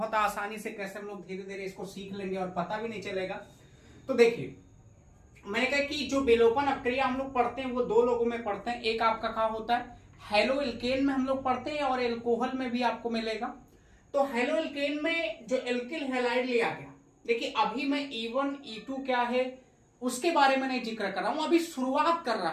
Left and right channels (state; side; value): identical; both; correlation 1.00